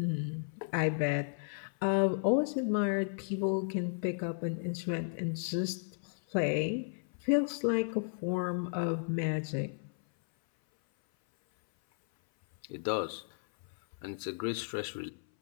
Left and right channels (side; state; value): right; silent; 55 dB below the other